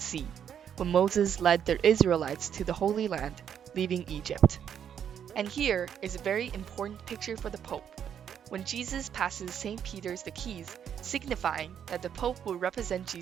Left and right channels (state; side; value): quieter; left; 8.7 dB